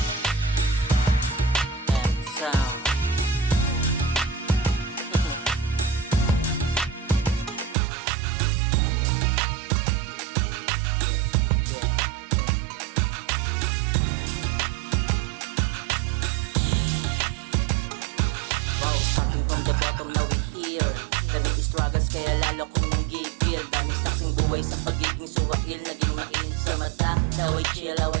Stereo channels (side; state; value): left; drops out; at 7.8 s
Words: And sound. Starting from the bottom, now we here. Daming struggles kaya lalo kong nanggigil. Daming saksing buhay sa pagiging suwail. Naging mainit sa mata, how I chill, how